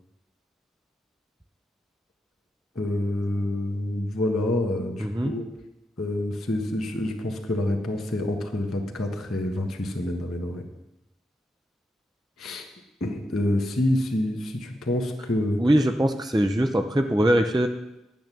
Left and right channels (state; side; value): normal; both; correlation 0.86